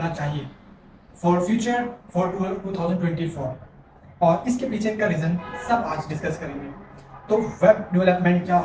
चाहिए फॉर फ्यूचर फॉर 2024 और इसके पीछे का रीज़न सब आज डिस्कस करेंगे। तो वेब डेवलपमेंट क्या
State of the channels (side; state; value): both; identical; correlation 1.00